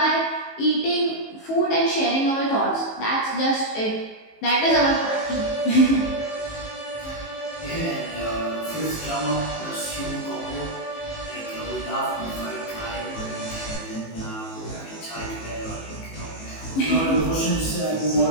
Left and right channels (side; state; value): right; late; 19 ms